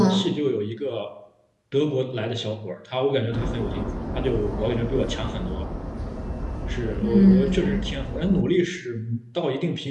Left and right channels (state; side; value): identical; both; correlation 1.00